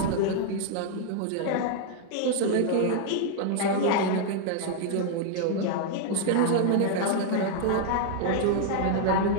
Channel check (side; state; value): both; different; correlation 0.00